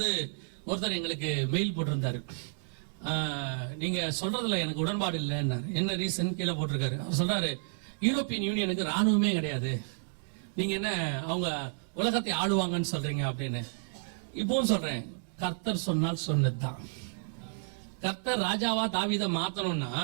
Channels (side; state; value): left; silent; digital silence